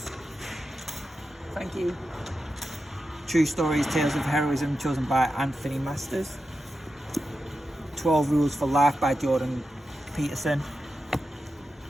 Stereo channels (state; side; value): normal; both; correlation 0.90